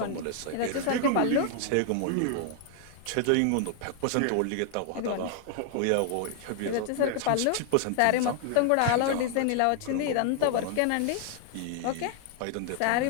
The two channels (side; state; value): both; different; correlation 0.00